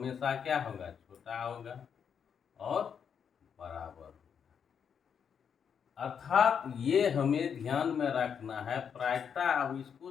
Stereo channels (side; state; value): right; quieter; 7.3 dB